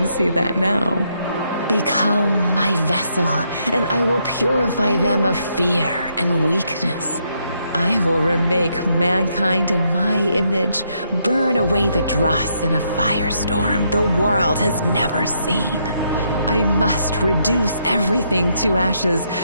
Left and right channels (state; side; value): inverted; both; correlation -0.76